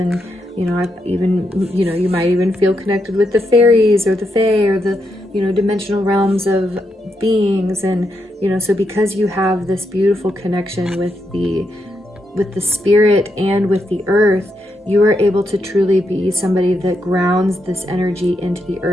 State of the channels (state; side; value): normal; both; correlation 0.82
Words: I've even, you might even feel connected with the fairies or the fae or the, dimensional realms of beings. And, so because you have this beautiful connection with the spirit and with the earth, you are able to truly be somebody that grounds this energy into the